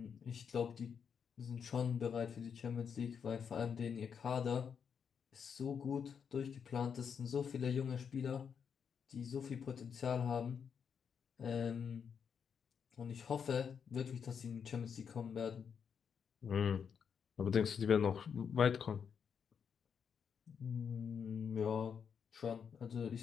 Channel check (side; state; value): right; quieter; 7.0 dB